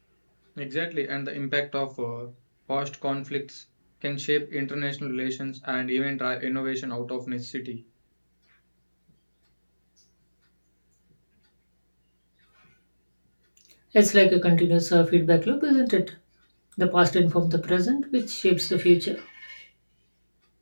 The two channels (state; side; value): inverted; both; correlation -1.00